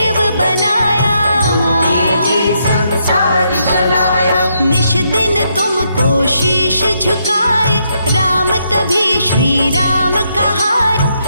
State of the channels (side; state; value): both; inverted; correlation -0.77